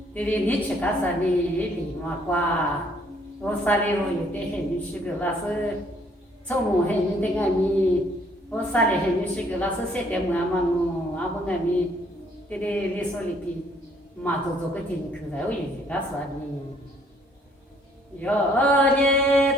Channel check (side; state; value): both; normal; correlation 0.64